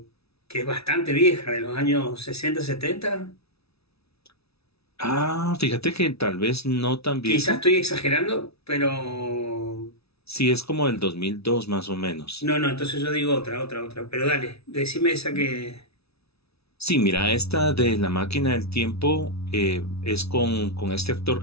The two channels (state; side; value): late; right; 0.78 ms